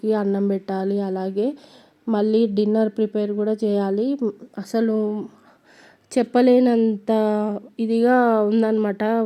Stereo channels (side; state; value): both; identical; correlation 1.00